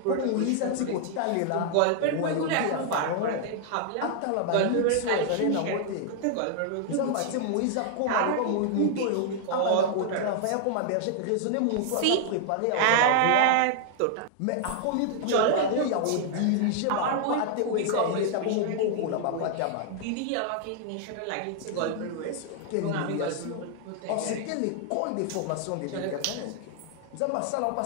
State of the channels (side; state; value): both; different; correlation -0.01